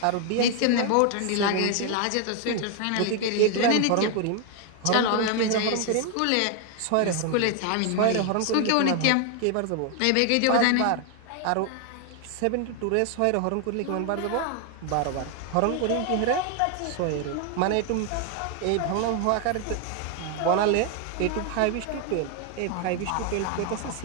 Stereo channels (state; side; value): different; both; correlation 0.00